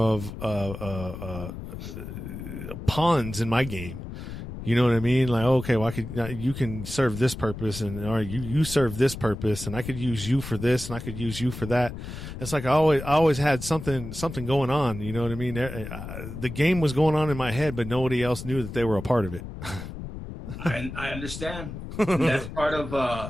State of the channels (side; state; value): left; noise; rumble, 9 dB below the sound